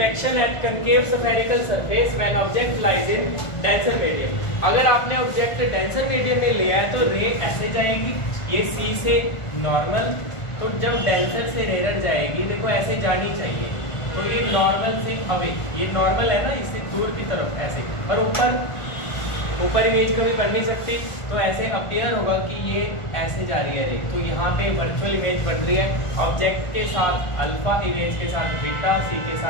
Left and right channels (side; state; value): right; late; 1.5 ms